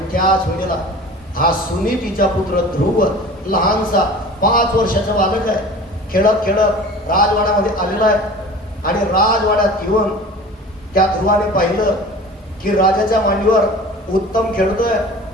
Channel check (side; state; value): both; normal; correlation 0.40